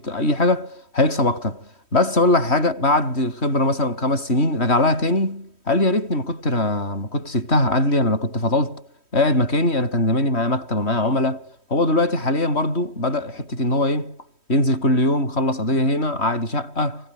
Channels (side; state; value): right; late; 3.1 ms